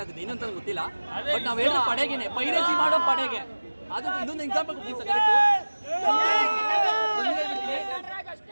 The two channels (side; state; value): both; inverted; correlation -1.00